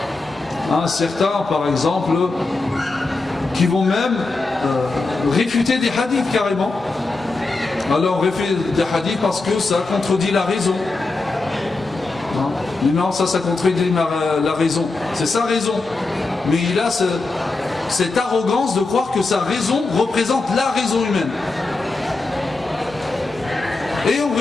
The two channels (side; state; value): right; quieter; 3.5 dB